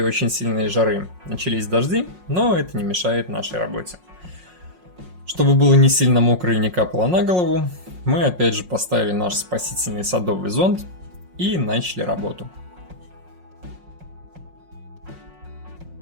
очень сильной жары начались дожди, но это не мешает нашей работе. Чтобы было не сильно мокро и не капало на голову, мы опять же поставили наш спасительный садовый зонт и начали работу.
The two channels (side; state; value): left; late; 5.5 ms